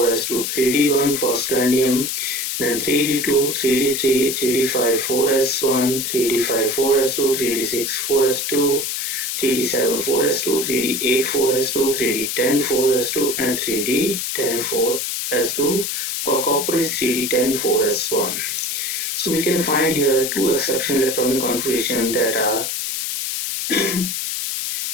3d1 for scandium, then 3d2, 3d3, 3d5, 4s1, 3d5, 4s2, 3d6, 4s2, 3d7, 4s2, 3d8, 4s2, 3d10, 4s2, and 3d10, 4s2. For copper is 3d10, 4s1. So we can find here two exceptional electronic configurations that are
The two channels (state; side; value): noise; left; hiss, 2 dB below the sound